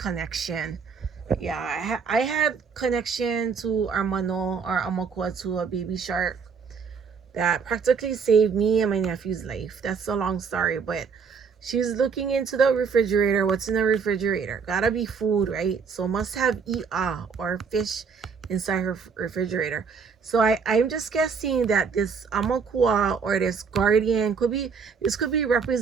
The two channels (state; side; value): quieter; left; 5.8 dB